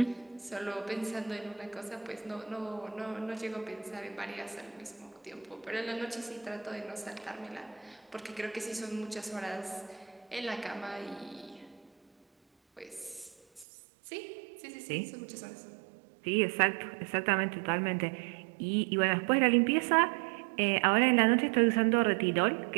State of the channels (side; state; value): left; drops out; at 13.7 s